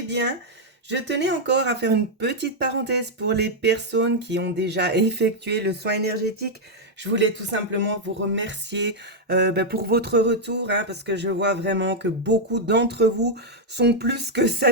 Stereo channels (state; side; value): normal; both; correlation -0.02